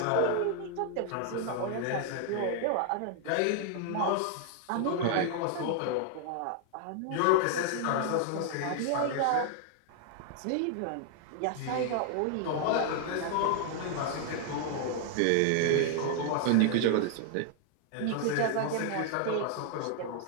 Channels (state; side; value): different; both; correlation 0.00